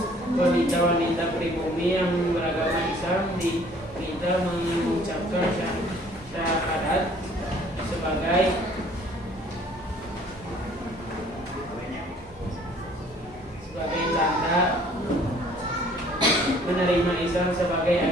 Wanita-wanita pribumi yang beragama Islam diminta mengucapkan syahadat sebagai tanda menerima Islam sebagai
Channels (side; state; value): both; normal; correlation 0.56